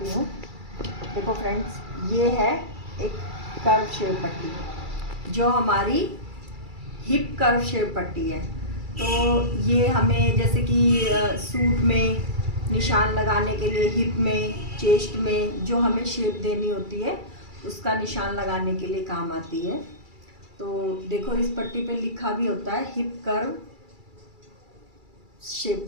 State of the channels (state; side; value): late; left; 2.3 ms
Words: हूँ। देखो फ्रेंड्स, ये है एक कर्व शेप पट्टी जो हमारी हिप कर्व शेप पट्टी है। तो ये हमें जैसे कि सूट में निशान लगाने के लिए, हिप में, चेस्ट में जो हमें शेप देनी होती है उसका निशान लगाने के लिए काम आती है। तो देखो, इस पट्टी पे लिखा भी होता है हिप कर्व शेप